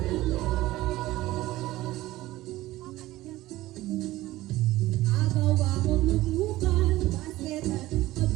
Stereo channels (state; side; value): quieter; left; 16.9 dB